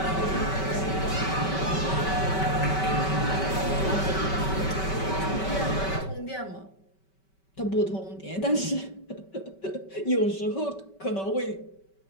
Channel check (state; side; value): late; right; 5.2 ms